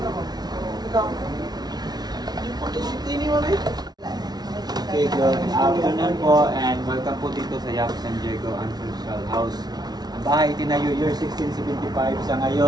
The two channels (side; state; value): left; late; 0.19 ms